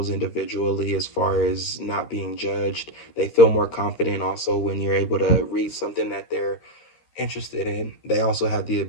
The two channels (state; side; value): late; right; 13 ms